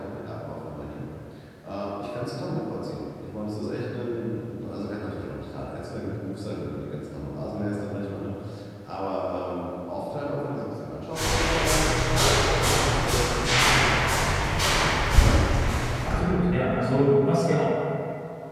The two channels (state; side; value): identical; both; correlation 1.00